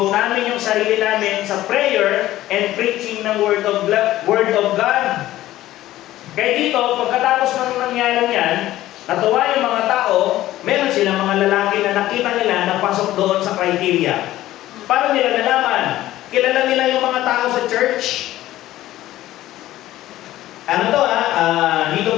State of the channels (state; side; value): quieter; right; 14.9 dB